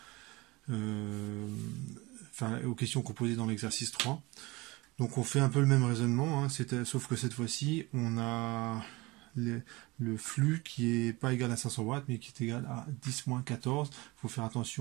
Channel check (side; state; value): left; quieter; 22.8 dB